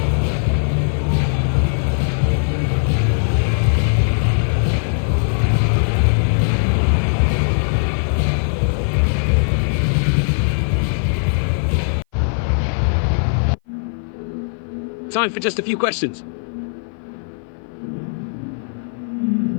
Time for just a few questions.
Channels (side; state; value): right; silent; 58 dB below the other